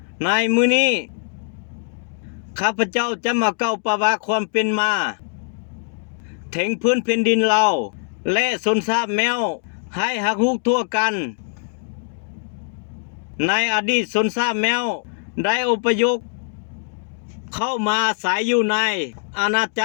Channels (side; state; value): right; silent; digital silence